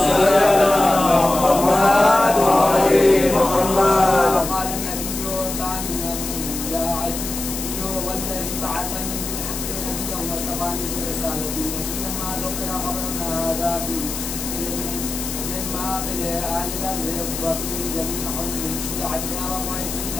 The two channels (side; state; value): left; noise; hiss, 6 dB below the sound